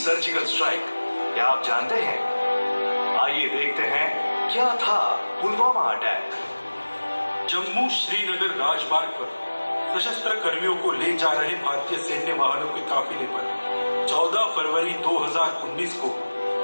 स्ट्राइक, क्या आप जानते हैं? आइए देखते हैं क्या था पुलवामा अटैक। जम्मू श्रीनगर राजमार्ग पर सशस्त्र कर्मियों को ले जा रहे भारतीय सैन्य वाहनों के काफिले पर 14 फरवरी 2019 को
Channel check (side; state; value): both; inverted; correlation -1.00